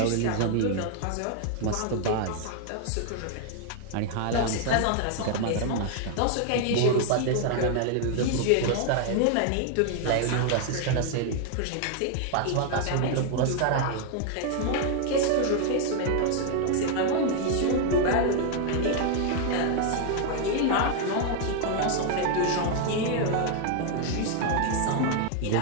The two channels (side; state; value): both; different; correlation 0.00